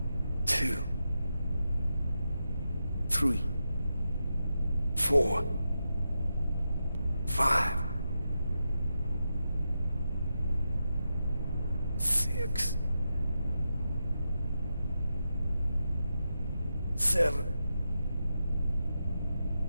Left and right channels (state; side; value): inverted; both; correlation -0.87